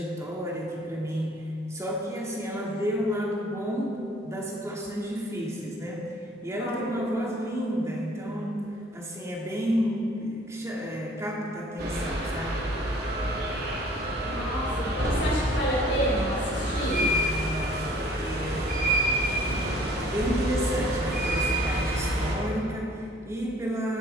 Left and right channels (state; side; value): normal; both; correlation 0.55